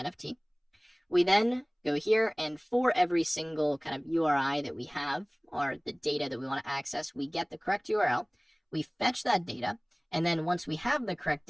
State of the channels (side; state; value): both; identical; correlation 1.00